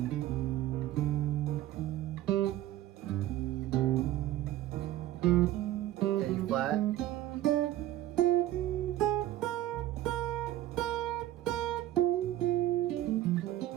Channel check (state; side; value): quieter; left; 14.1 dB